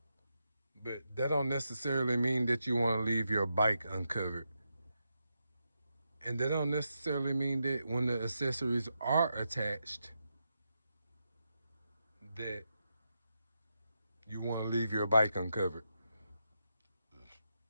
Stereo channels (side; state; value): both; inverted; correlation -0.85